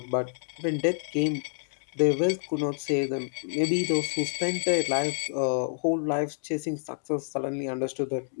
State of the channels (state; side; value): silent; right; digital silence